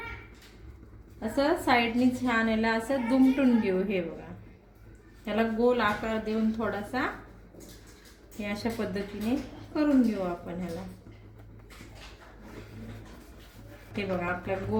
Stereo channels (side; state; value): both; identical; correlation 1.00